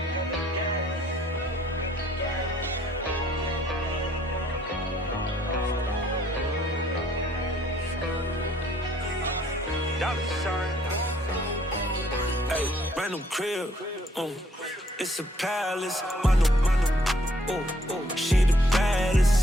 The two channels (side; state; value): both; normal; correlation 0.64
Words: Hey, random crib, it's a palace, mano, she the baddest,